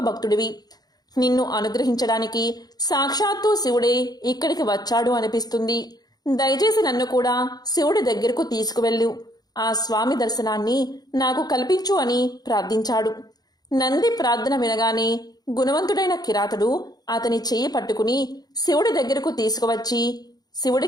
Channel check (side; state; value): right; late; 0.19 ms